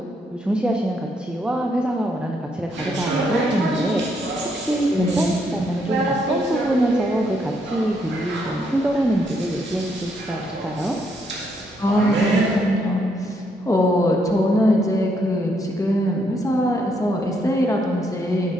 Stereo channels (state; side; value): normal; both; correlation 0.74